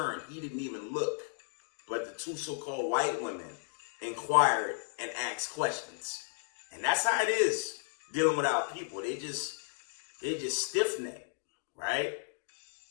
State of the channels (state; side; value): silent; right; digital silence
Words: He didn't even look. But the two so-called white women inquired and asked questions. And that's how it is dealing with our people. They just stiff-necked, right?